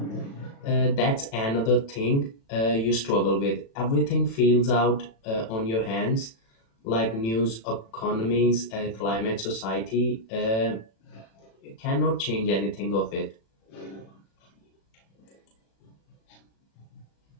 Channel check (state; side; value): late; right; 36 ms